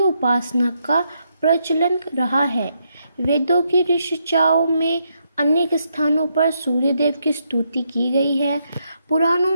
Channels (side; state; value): both; inverted; correlation -0.78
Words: का प्रचलन रहा है। वेदों की ऋचाओं में अनेक स्थानों पर सूर्य देव की स्तुति की गई है। पुराणों